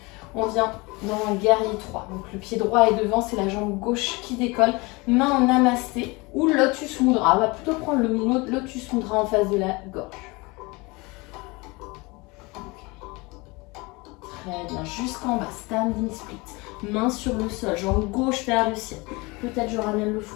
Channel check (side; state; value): right; quieter; 25.2 dB